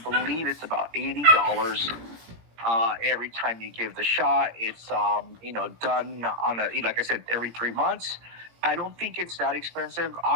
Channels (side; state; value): left; late; 18 ms